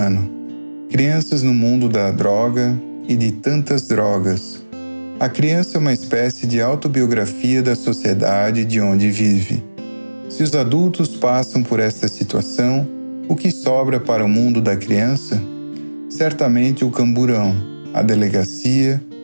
Crianças no mundo da droga e de tantas drogas. A criança é uma espécie de autobiografia da sociedade de onde vive. Se os adultos passam por esta situação, o que sobra para o mundo da criança? Certamente o camburão, a delegacia,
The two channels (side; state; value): both; inverted; correlation -1.00